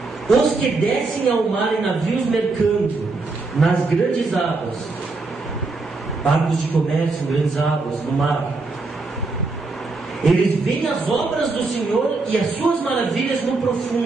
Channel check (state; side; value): quieter; left; 3.7 dB